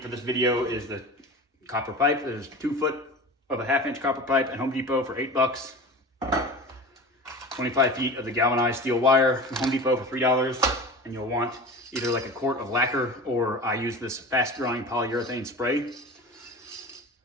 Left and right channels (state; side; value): normal; both; correlation 0.33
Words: this video is the copper pipe. There's 2 foot of a 1/2 inch copper pipe at Home Depot for $8. 25 feet of the galvanized steel wire from Home Depot for $3. And you'll want either like a quart of lacquer, or I use this fast drying polyurethane spray.